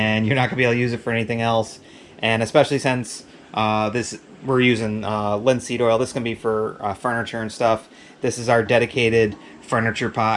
you're not going to be able to use it for anything else. And especially since we're using linseed oil, this is going to be for furniture and stuff. This is our dedicated furniture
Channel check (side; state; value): both; identical; correlation 1.00